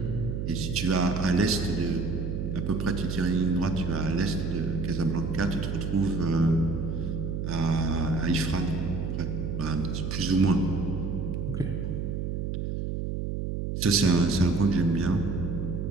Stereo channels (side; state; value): right; noise; hum, 2 dB below the sound